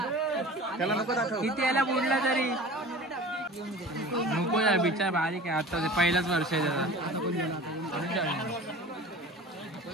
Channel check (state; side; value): normal; both; correlation 0.39